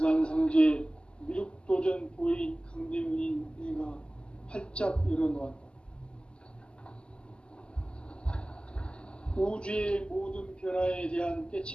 미륵도전 도인 강대문인 내가 활짝 열어놓았다. 우주의 모든 변화에 대한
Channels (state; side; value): late; right; 0.050 ms